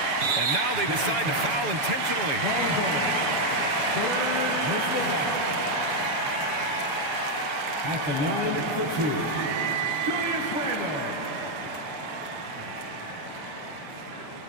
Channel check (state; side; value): late; left; 7.1 ms